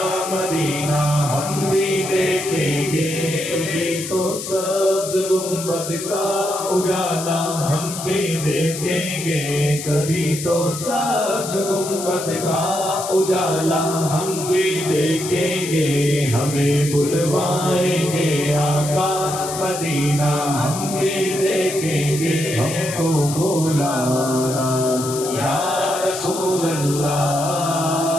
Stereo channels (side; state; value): left; noise; hiss, 8 dB below the sound